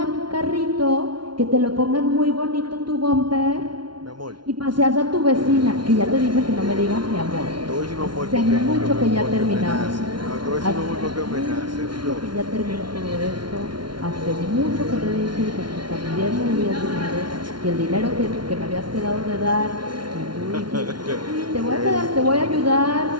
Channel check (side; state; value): left; late; 0.72 ms